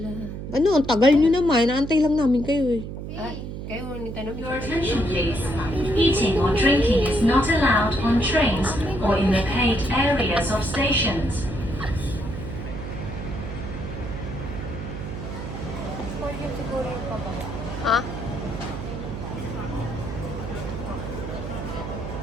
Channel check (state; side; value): noise; right; hum, 8 dB below the sound